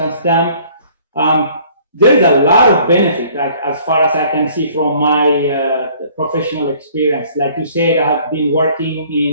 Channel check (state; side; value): inverted; both; correlation -0.56